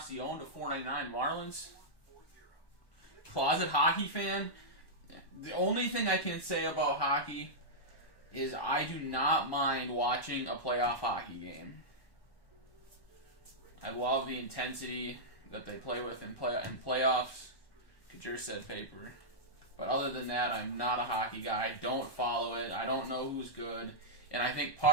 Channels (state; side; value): late; right; 1.2 ms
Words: to 499 Marlins. Closet hockey fan. The only thing I can say about hockey is I do not mind watching a playoff hockey game. I love the intensity that they play with in playoffs. Kajir said paper. But other than that, I'm not a hockey guy. I don't follow it. I don't know who's good. And I think